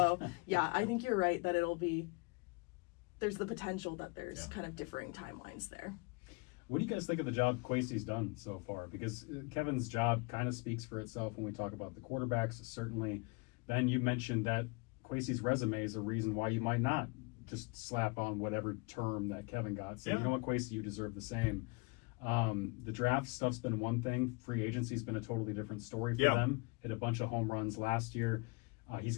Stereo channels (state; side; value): quieter; right; 29.2 dB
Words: yeah, I think you're right that there's the potential that there's kind of differing timelines there. What do you guys think of the job Kwesi's done so far? Because Kevin's job kind of speaks for itself when we talk about the quarterbacks. Certainly, Ben, you mentioned that Kwesi's resume is a reason why you might not just slap on whatever term that Kevin got. So, Yeah. you know what, Kwesi, you deserve the same. The draft stuff's been one thing. Free agency's been a totally different story for them. Hit a bunch of home runs last year. He's